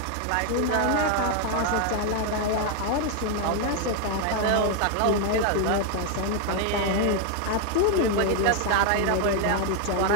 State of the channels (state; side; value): different; both; correlation 0.00